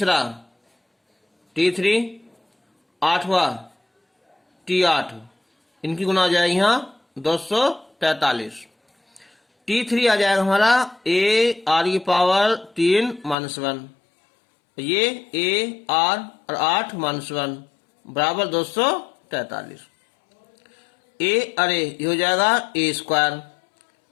T3 8वां T8 इनकी गुना आ जाएगी यहाँ 243। T3 आ जाएगा हमारा a r की पावर 3 माइनस 1, ये a r और 8 माइनस 1 बराबर 243। a अरे ये हो जाएगा a स्क्वायर,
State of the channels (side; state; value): right; drops out; at 13.4 s